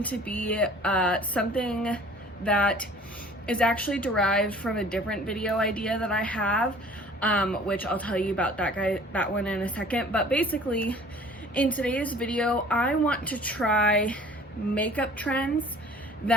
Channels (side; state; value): both; normal; correlation 0.49